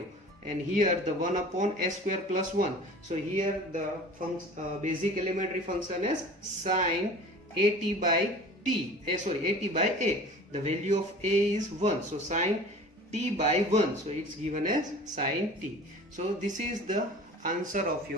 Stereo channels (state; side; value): normal; both; correlation 0.42